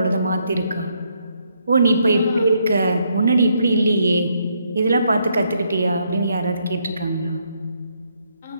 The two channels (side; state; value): both; inverted; correlation -0.74